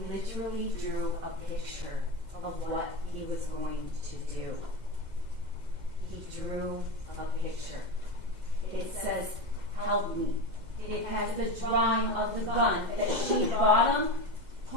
literally drew a picture of what he was going to do. He drew a picture. It says, "Help me." It has the drawing of the gun that she bought him,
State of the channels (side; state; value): left; late; 2.0 ms